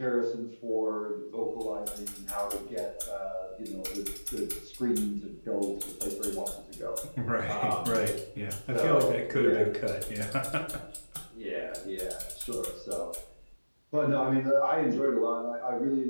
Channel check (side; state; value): both; inverted; correlation -1.00